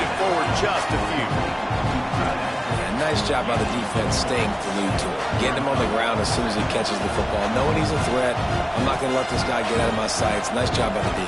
forward just a few. Yeah, nice job by the defense staying glued to it. Getting him on the ground as soon as he catches the football. Knowing he's a threat, I'm not going to let this guy get out of my sights. Nice job by the D.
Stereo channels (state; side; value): identical; both; correlation 1.00